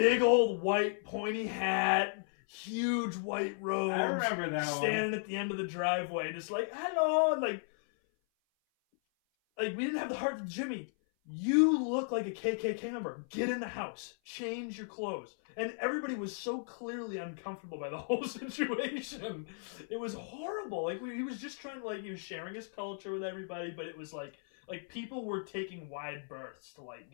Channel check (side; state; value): right; silent; 54 dB below the other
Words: old white pointy hat, huge white robes. I remember that standing at the end of the driveway, just hello, and we didn't have the heart of Jimmy. You look like a KKK member. Get in the house. Change your clothes. And everybody was so clearly uncomfortable by the whole situation. It was horrible. He was just trying to, he was sharing his culture with everybody, but it was like people were taking wide berths to,